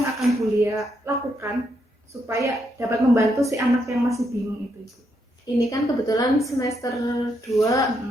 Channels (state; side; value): normal; both; correlation 0.78